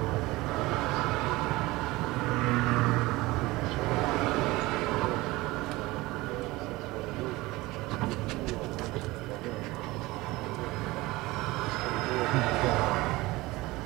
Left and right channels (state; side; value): quieter; left; 20.3 dB